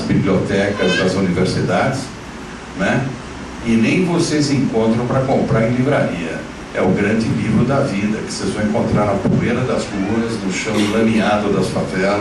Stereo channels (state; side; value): identical; both; correlation 1.00